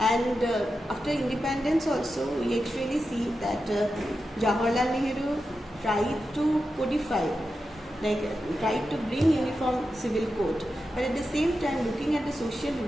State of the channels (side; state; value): both; normal; correlation 0.90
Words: after independence also we actually see that Jawaharlal Nehru tried to codify, like tried to bring uniform civil code, but at the same time, looking at the social